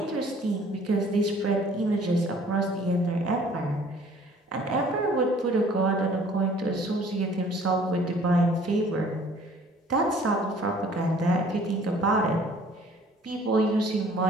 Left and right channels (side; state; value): both; normal; correlation 0.54